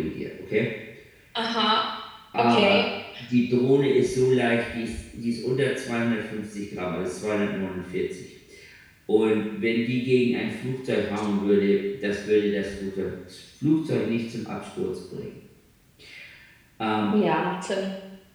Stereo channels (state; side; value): identical; both; correlation 1.00